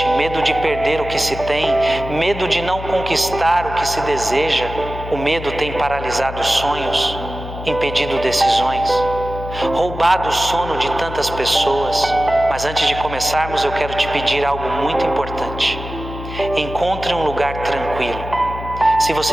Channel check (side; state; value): left; noise; hum, 10 dB below the sound